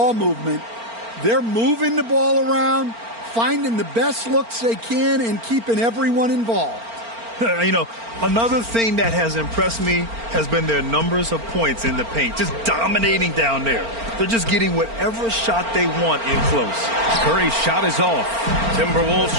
movement. They're moving the ball around, finding the best looks they can, and keeping everyone involved. You know, another thing that has impressed me has been their numbers of points in the paint, just dominating down there. They're just getting whatever shot they want in close. Curry's shot is off. Timberwolves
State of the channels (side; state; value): left; late; 4.4 ms